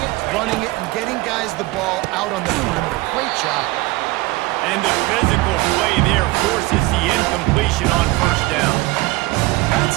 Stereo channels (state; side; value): quieter; left; 20.8 dB